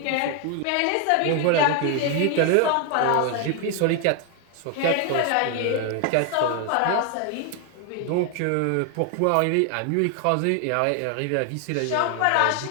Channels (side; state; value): both; different; correlation 0.00